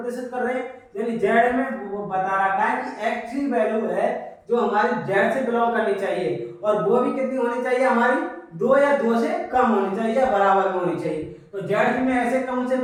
कर रहे हैं? यानी जेड में वो बता रखा है कि एक्स की वैल्यू है जो हमारी जेड से बिलोंग करनी चाहिए, और वो भी कितनी होनी चाहिए? हमारी 2 या 2 से कम होनी चाहिए या बराबर में होनी चाहिए। तो जेड में ऐसे कौन से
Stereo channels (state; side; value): identical; both; correlation 1.00